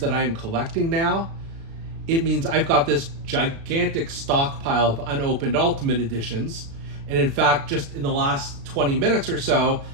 I'm collecting now, it means I've got this gigantic stockpile of unopened Ultimate Editions. And in fact, just in the last 20 minutes or so,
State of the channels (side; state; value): left; late; 36 ms